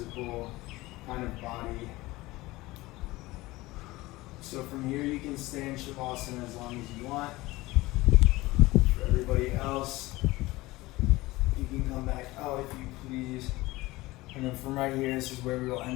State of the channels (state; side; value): quieter; right; 19.8 dB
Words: kind of body. So from here, you can stay in Shavasana as long as you want. For everybody else, you can come back out if you please. And then from right here, this is where we will